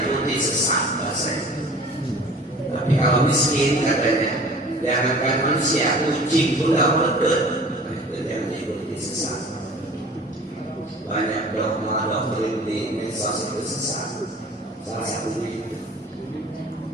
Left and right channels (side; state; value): both; normal; correlation 0.45